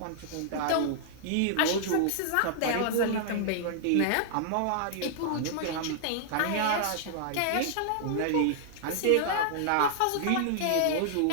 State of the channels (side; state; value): both; different; correlation -0.01